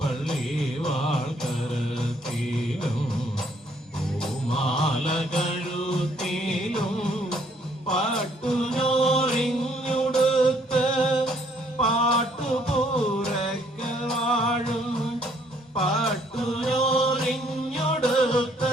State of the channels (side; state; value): both; normal; correlation 0.65